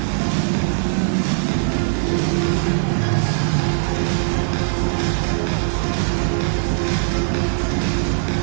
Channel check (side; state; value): left; silent; digital silence